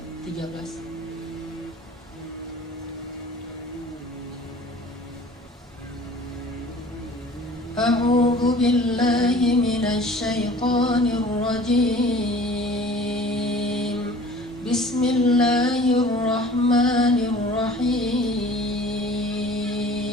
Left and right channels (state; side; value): normal; both; correlation 0.46